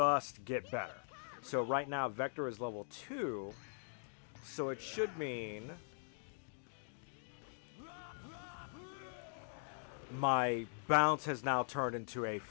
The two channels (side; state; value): right; silent; digital silence